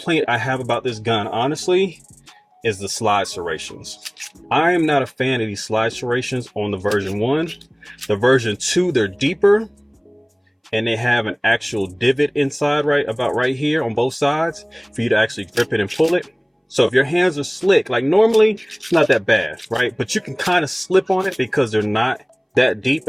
I have about this gun, honestly, is the slide serrations. I am not a fan of these slide serrations on the version 1. The version 2, they're deeper, and they have an actual divot inside right here on both sides for you to actually grip it and pull it. So if your hands are slick, like normally, it's not that bad, right? But you can kind of slip on it because they're not that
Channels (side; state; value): both; identical; correlation 1.00